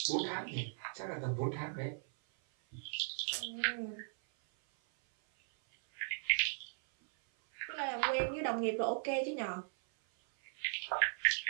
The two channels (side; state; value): left; silent; 53 dB below the other